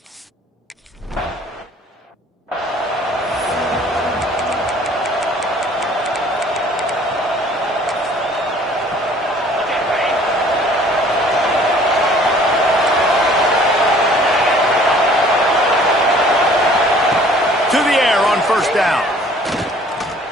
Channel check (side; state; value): both; normal; correlation 0.54